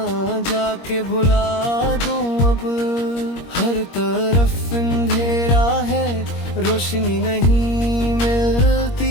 जाके भुला दूं अब। हर तरफ अंधेरा है, रोशनी नहीं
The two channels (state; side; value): late; right; 21 ms